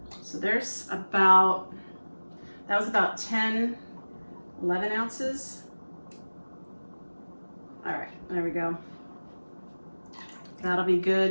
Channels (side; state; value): both; inverted; correlation -1.00